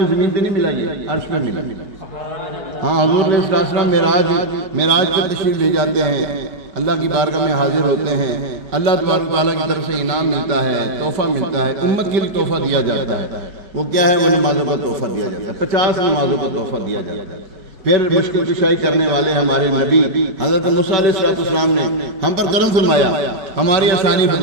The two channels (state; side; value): late; left; 5.1 ms